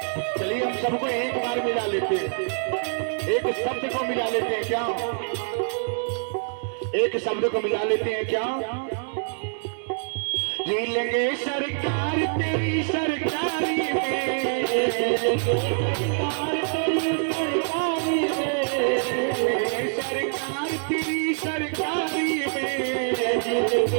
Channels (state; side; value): silent; left; 62 dB below the other